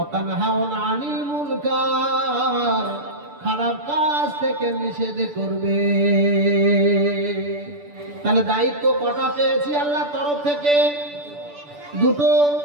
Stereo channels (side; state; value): left; late; 6.9 ms